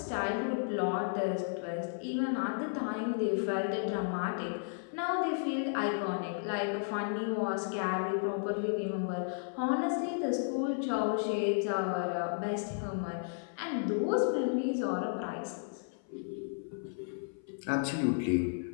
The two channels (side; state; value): right; silent; 55 dB below the other